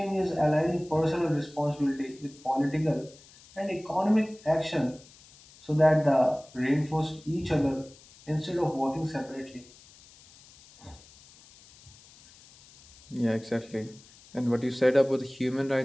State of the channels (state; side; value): noise; left; hiss, 24 dB below the sound